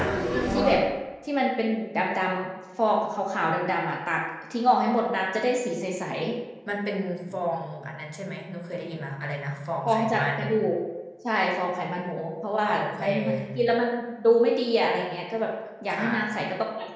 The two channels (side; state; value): both; identical; correlation 1.00